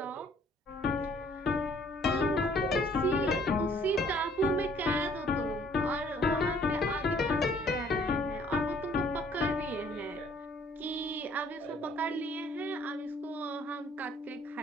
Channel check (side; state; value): both; normal; correlation 0.60